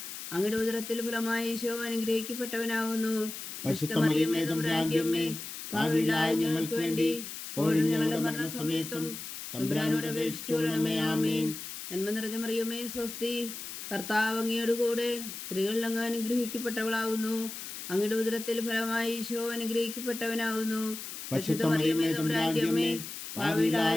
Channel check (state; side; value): noise; left; hiss, 9 dB below the sound